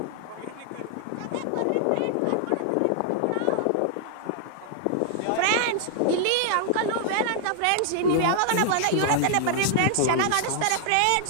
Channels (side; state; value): both; different; correlation -0.01